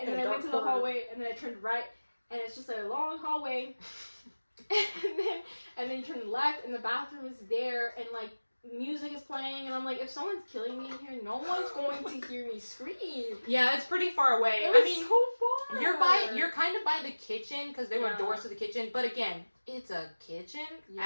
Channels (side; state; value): both; inverted; correlation -1.00